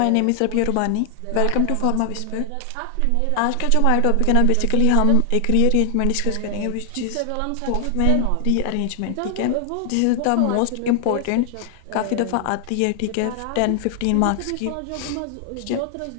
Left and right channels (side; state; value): both; different; correlation 0.00